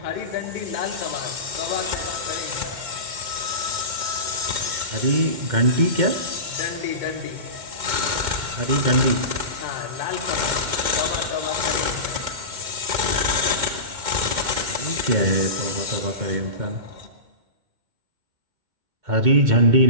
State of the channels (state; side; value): late; left; 2.1 ms